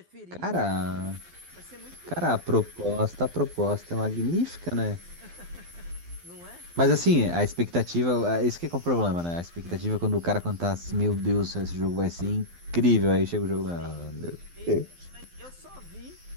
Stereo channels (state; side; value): late; left; 12 ms